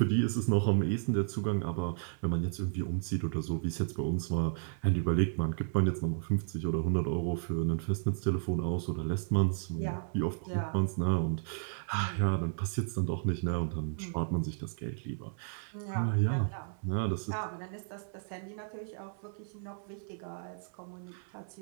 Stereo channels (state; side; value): silent; left; 56 dB below the other